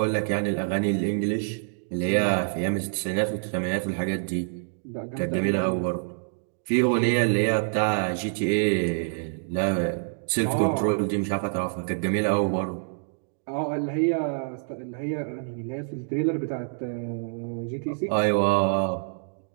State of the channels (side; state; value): left; silent; digital silence